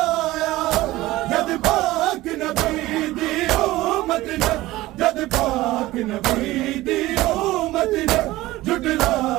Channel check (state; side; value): quieter; left; 17.7 dB